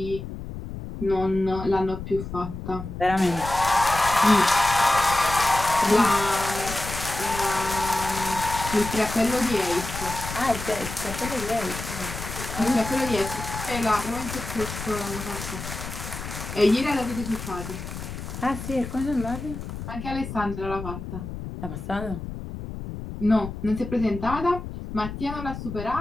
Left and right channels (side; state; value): left; noise; rumble, 8 dB below the sound